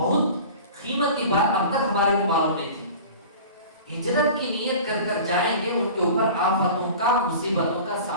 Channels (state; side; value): inverted; both; correlation -0.39